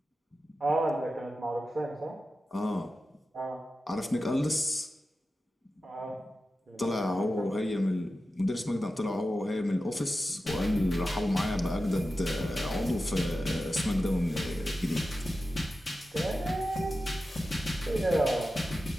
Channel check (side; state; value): both; normal; correlation 0.93